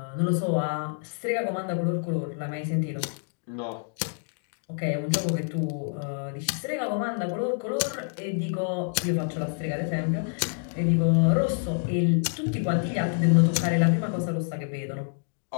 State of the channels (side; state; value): right; silent; 60 dB below the other